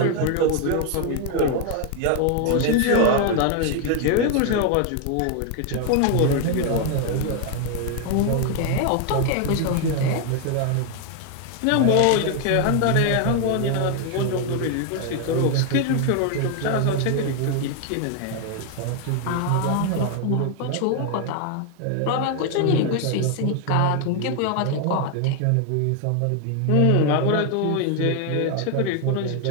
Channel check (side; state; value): both; different; correlation 0.00